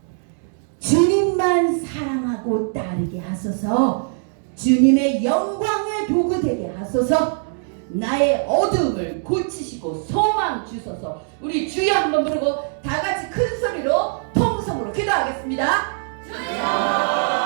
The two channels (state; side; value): silent; left; 61 dB below the other